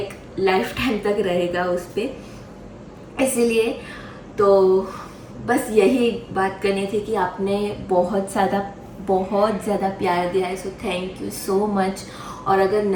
लाइफ टाइम तक रहेगा उस पर। इसीलिए तो बस यही बात करनी थी कि आपने बहुत ज़्यादा प्यार दिया है, so thank you so much. और अगर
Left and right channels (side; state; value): both; identical; correlation 1.00